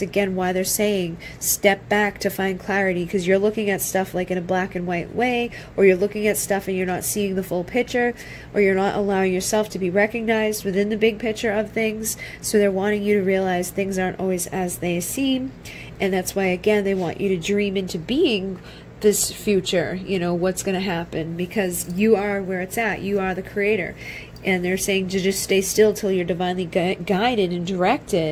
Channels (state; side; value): identical; both; correlation 1.00